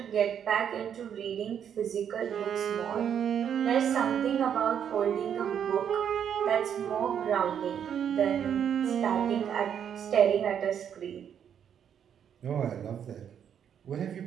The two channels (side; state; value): left; quieter; 8.6 dB